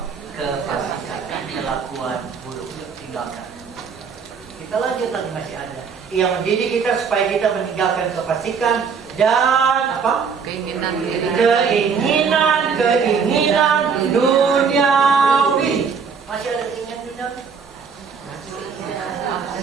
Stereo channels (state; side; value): quieter; left; 6.0 dB